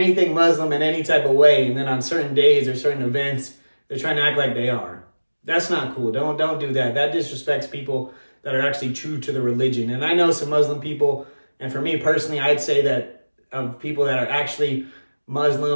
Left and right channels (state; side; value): inverted; both; correlation -1.00